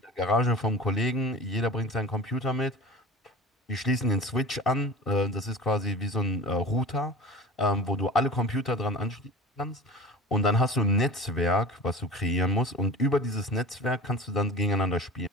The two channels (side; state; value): both; normal; correlation 0.36